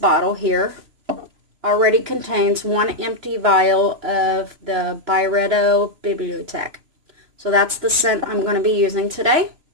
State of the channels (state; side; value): late; left; 3.0 ms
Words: here already contains one empty vial of the Byredo Bibliothèque. So that's the scent I'm going to be using today.